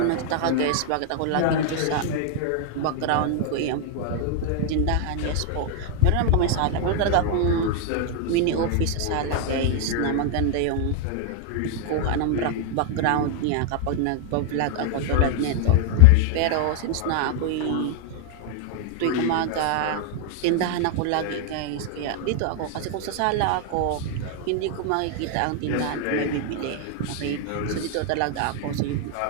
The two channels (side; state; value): both; different; correlation 0.00